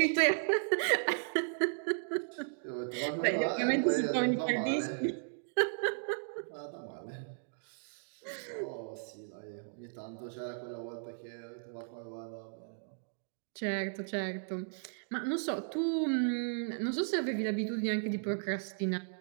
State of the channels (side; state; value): left; silent; digital silence